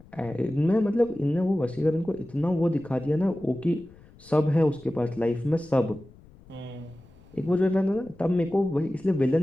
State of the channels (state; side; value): noise; left; rumble, 24 dB below the sound